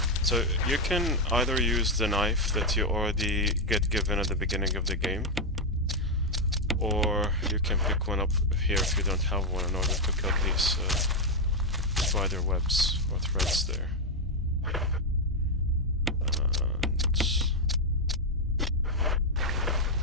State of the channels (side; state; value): both; normal; correlation 0.02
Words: So you can either use the knife that you already get given at the beginning of the game, or you can pick one up here if you don't have one in order to cut these spider webs or threads there. And